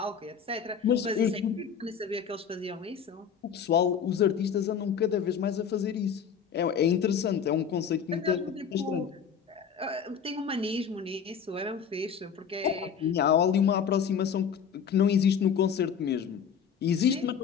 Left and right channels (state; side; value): quieter; right; 7.2 dB